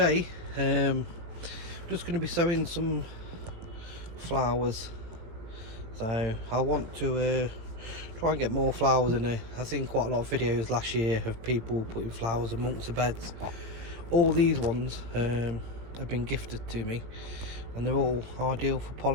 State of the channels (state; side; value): late; left; 18 ms